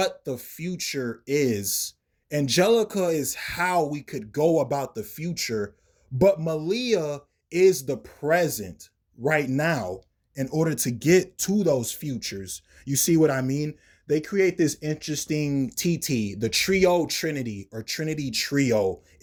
the future is, Angelica is how we could go about the future, but Malia is the present right now in order to get to those futures. You see what I mean? They create this interesting TT, the trio trinity or trinity trio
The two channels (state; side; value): identical; both; correlation 1.00